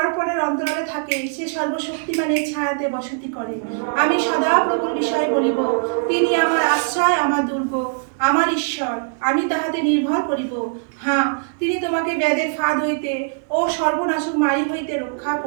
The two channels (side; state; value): left; silent; digital silence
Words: পরের অন্তরালে থাকে সে সর্বশক্তিমানের ছায়াতে বসতি করে। আমি সদা প্রভুর বিষয়ে বলিব, তিনি আমার আশ্রয়, আমার দুর্গ, আমার ঈশ্বর, আমি তাহাতে নির্ভর করিব। হ্যাঁ, তিনি তোমাকে ব্যাধের ফাঁদ হইতে ও সর্বনাশক মারি হইতে রক্ষা